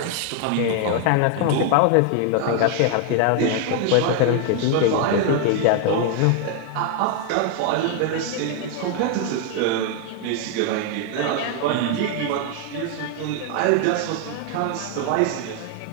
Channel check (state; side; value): different; both; correlation 0.00